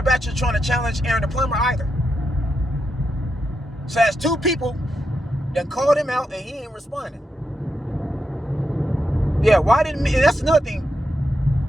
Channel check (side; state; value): both; normal; correlation 0.85